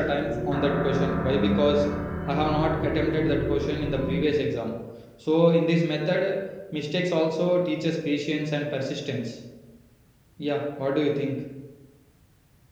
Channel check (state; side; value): identical; both; correlation 1.00